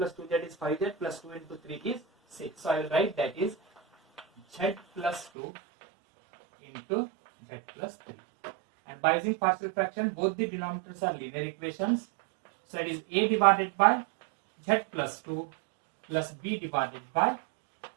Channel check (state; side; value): drops out; left; at 5.3 s